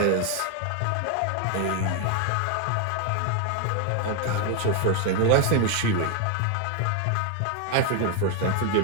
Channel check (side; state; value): both; different; correlation 0.01